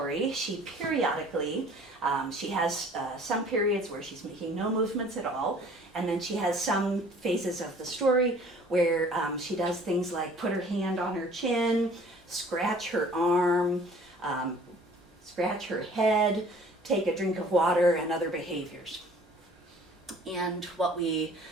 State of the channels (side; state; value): both; normal; correlation 0.52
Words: she periodically, she has some periods where she's making no movements at all, and then she has some phases of the story where she does things like put her hand on her chin, scratch her arm, scratch her head, take a drink of water, and other behaviors. And what we